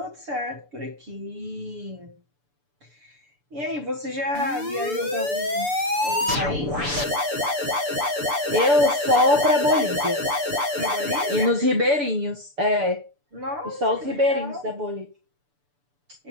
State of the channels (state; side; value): late; left; 6.9 ms